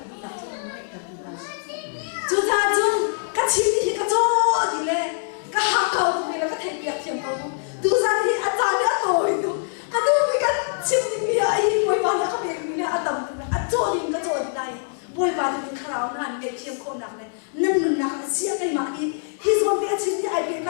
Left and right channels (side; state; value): right; silent; digital silence